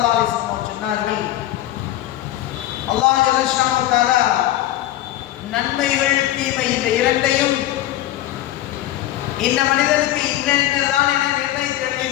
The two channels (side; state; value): right; quieter; 14.0 dB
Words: அலைஹி வஸல்லம் சொன்னார்கள், அல்லாஹ் ஜல்லஷானஹு தஆலா நன்மைகள் தீமை இந்த இரண்டையும் இந்த மனிதனுக்கு இன்னதான் என நிர்ணயித்து